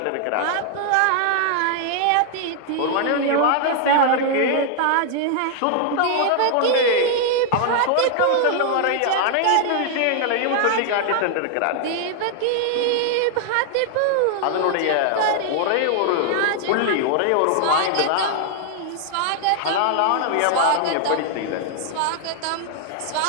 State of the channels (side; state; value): both; different; correlation 0.00